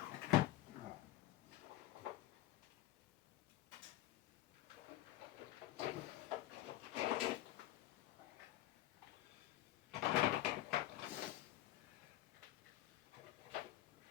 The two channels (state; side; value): quieter; right; 14.8 dB